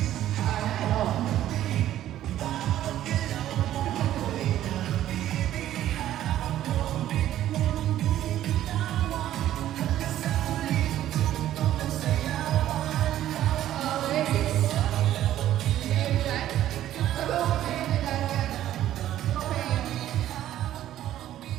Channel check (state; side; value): quieter; left; 12.6 dB